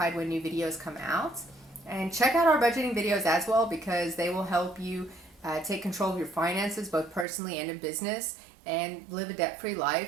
when new videos come out. And check out our budgeting videos as well, because they will help you take control of your finances, both personally and in business, and live a debt-free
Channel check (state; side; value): drops out; left; at 7.2 s